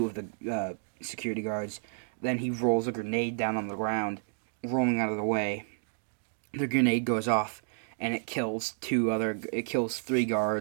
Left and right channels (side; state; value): left; silent; digital silence